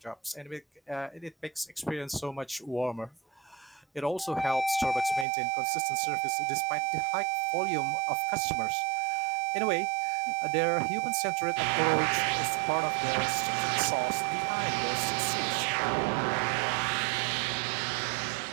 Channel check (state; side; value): drops out; left; at 5.2 s